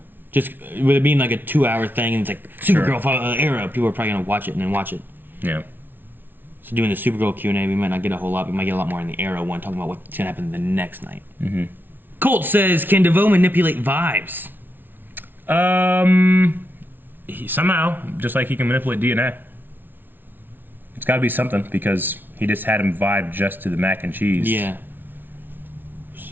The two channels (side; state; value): left; late; 0.095 ms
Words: Just with it being like a 2-hour thing and it's like Supergirl, Arrow, people are probably going to watch it and then watch it. Yeah. So doing the Supergirl Q&A, we might not get a whole lot. We might get a lot more in the Arrow one, talking about what's going to happen the next night. Mm-hmm. Colt says, can DeVoe manipulate vibes? Somehow, just like he can manipulate DNA. It's got to be something because he just had him vibe just to the mac and cheese. Yeah.